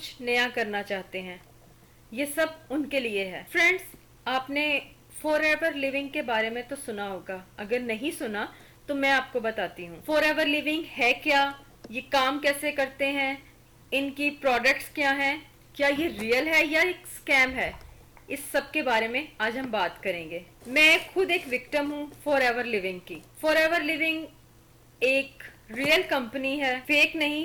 नया करना चाहते हैं। ये सब उनके लिए है। फ्रेंड्स, आपने फॉर एवर लिविंग के बारे में तो सुना होगा। अगर नहीं सुना तो मैं आपको बताती हूँ फॉर एवर लिविंग है क्या, ये काम कैसे करते हैं, इनकी प्रोडक्ट्स क्या हैं, क्या ये रियल है या एक स्कैम है, इस सब के बारे में आज हम बात करेंगे। मैं खुद एक विक्टिम हूँ फॉर एवर लिविंग की। फॉर एवर लिविंग एक रियल कंपनी है, फेक नहीं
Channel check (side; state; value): both; identical; correlation 1.00